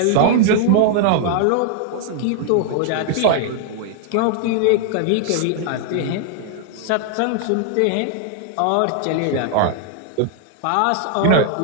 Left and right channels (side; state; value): both; different; correlation 0.00